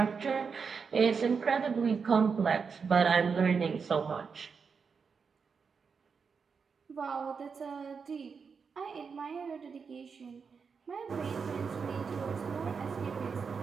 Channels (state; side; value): quieter; left; 5.7 dB